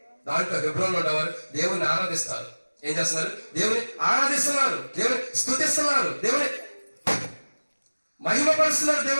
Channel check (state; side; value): inverted; both; correlation -1.00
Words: దాంట్లో హెబ్రోన్ ఉండేవారు దేవుని ఆరాధిస్తారు. ఏం చేస్తున్నారు? దేవుని ఆరాధిస్తున్నారు, దేవుని స్తుతిస్తున్నారు, దేవుని మహిమపరుస్తున్నారు.